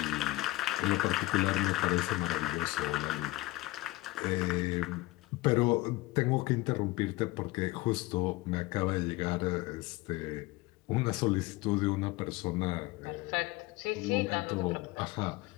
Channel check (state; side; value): quieter; right; 19.8 dB